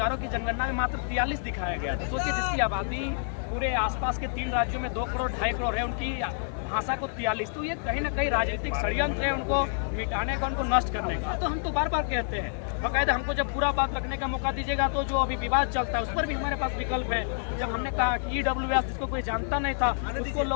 की जनगणना में मात्र 43 दिखाया गया था। सोचिए जिसकी आबादी पूरे आसपास के 3 राज्यों में 2 करोड़ 2.5 करोड़ है, उनकी भाषा को 43, तो ये कहीं ना कहीं राजनीतिक षड्यंत्र है उनको मिटाने का, उनको नष्ट करने का। तो हम तो बार बार कहते हैं, बाकायदा हमको जब पूरा बात रखने का मौका दीजिएगा तो जो अभी विवाद चलता है उस पर भी हमारे पास विकल्प है। जब हमने कहा कि EWS जिसको कोई जानता नहीं था उसको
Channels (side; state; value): right; silent; digital silence